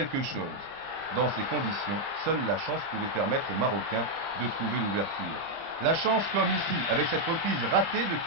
chose. Dans ces conditions, seule la chance pouvait permettre aux Marocains de trouver l'ouverture. La chance comme ici, avec cette reprise ratée de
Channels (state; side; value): late; left; 30 ms